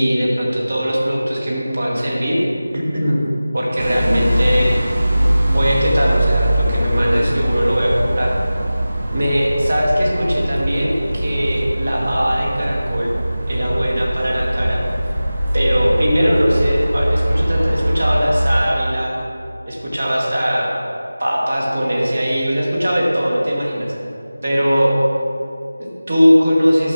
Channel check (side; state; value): both; inverted; correlation -0.97